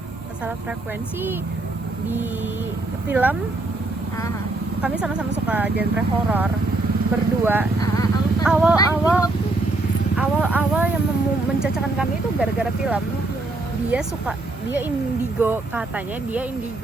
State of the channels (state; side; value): quieter; left; 3.0 dB